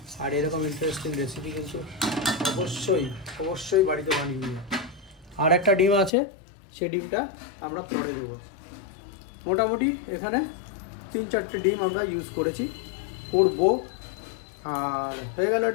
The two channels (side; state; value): right; drops out; at 6.1 s